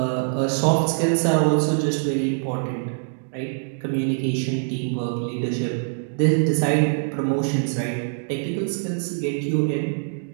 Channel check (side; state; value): left; silent; digital silence